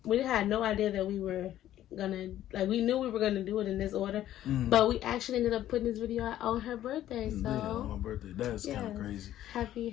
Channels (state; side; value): quieter; right; 12.6 dB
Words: we had no idea that we were gonna, like, we knew we were gonna do it in this order, but we actually ended up putting this video out on her birthday. So yeah, on my birthday. That's kind of crazy. Happy